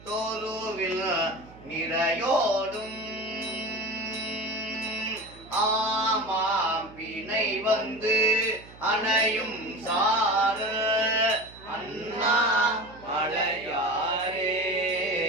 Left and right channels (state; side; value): noise; right; hum, 21 dB below the sound